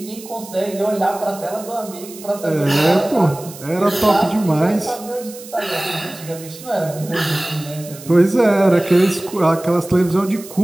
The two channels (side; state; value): right; noise; hiss, 17 dB below the sound